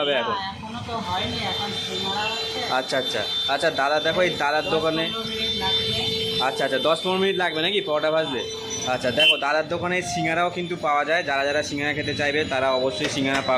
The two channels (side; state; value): both; identical; correlation 1.00